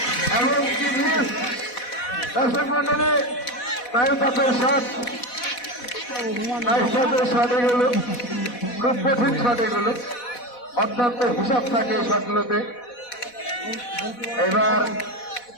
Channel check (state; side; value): late; right; 4.1 ms